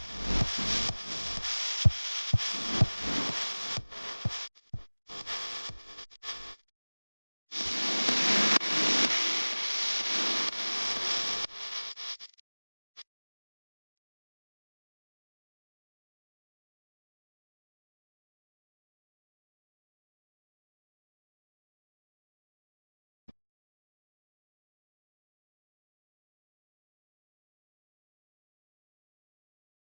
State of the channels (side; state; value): both; inverted; correlation -1.00